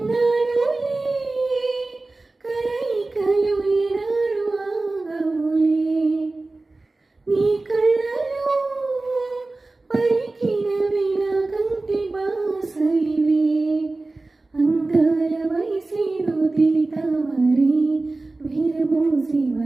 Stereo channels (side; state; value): left; quieter; 3.2 dB